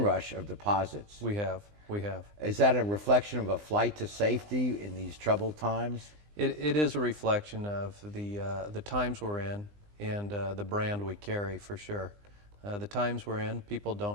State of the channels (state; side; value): late; left; 20 ms